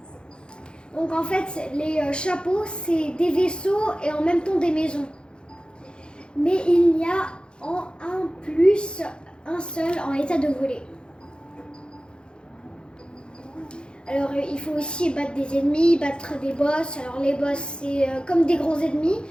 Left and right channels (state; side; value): late; right; 0.051 ms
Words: Donc en fait, les chapeaux, c'est des vaisseaux et en même temps des maisons. Mais il y a en un plus un seul en état de voler. Alors il faut aussi battre des ennemis, battre des boss. Alors les boss, c'est comme des gros ennemis.